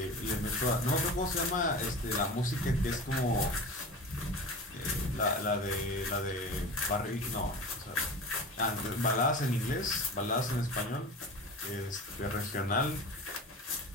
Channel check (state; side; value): normal; both; correlation 0.33